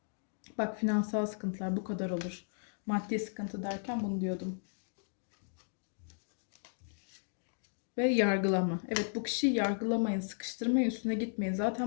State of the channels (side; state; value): right; silent; digital silence